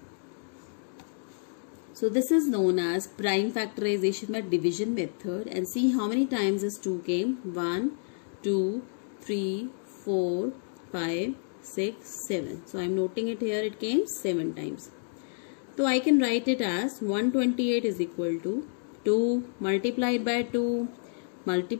So this is known as prime factorization by division method. And see how many times this 2 came. 1, 2, 3, 4, 5, 6, 7. So I am noting it here, it came 7 times. So I can write it as 128 is equal to 2 multiplied by 2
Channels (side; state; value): right; silent; digital silence